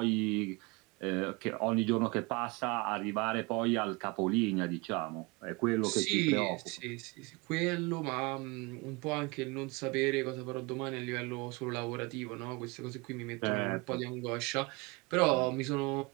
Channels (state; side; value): quieter; left; 26.7 dB